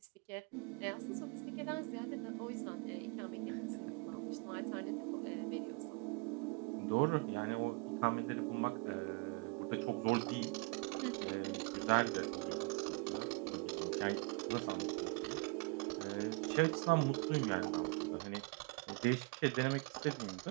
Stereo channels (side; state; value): left; quieter; 29.1 dB